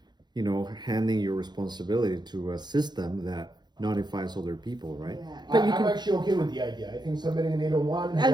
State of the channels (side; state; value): left; late; 0.21 ms